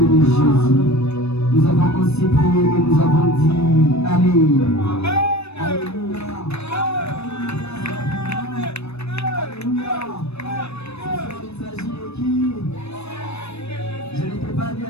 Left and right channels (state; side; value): late; right; 0.80 ms